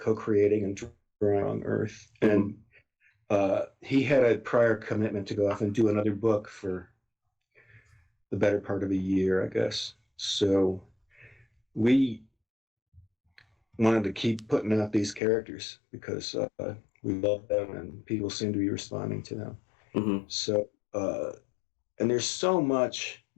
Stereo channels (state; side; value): drops out; right; at 15.2 s